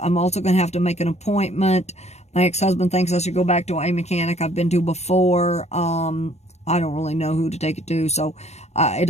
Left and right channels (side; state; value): right; late; 0.32 ms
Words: I'm also going to have to make an appointment. My ex-husband thinks I should go back to a mechanic I've been to before. I don't really know who to take it to, so it